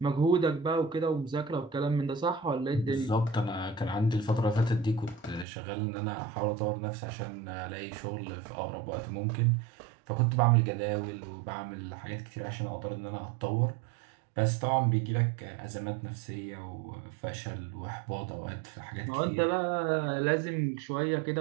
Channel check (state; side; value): drops out; left; at 5.5 s